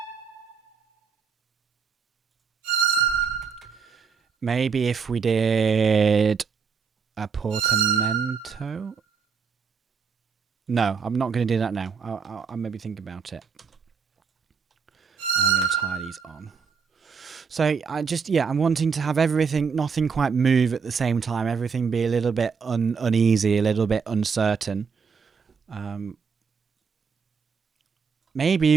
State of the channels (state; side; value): quieter; left; 5.9 dB